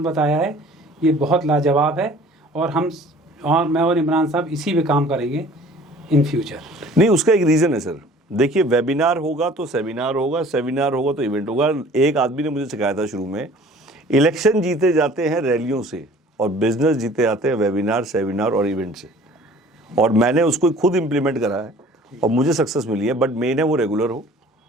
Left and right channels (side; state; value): both; normal; correlation 0.50